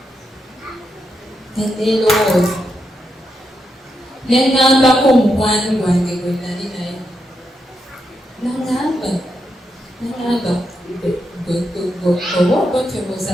neerowooza nengambako omukwano gwange gwe nali naye nangamba oba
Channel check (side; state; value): both; normal; correlation 0.83